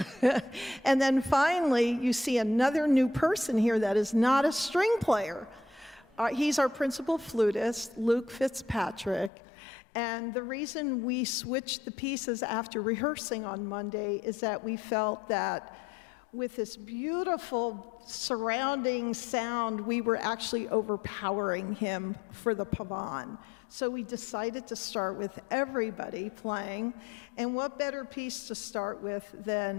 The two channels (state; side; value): drops out; right; at 9.3 s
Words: And then finally, you see another new person here that is not a string player, He's our principal flutist, Luke Fitzpatrick. And the reason we switched the pieces after rehearsing on Monday is that we felt that with this beautiful surrounding sound, we were actually overpowering him for the pavane. So we decided to start with everybody playing. And what better piece to start with